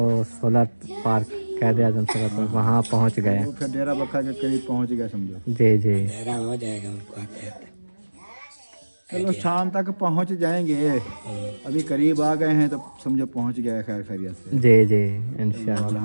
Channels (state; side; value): inverted; both; correlation -1.00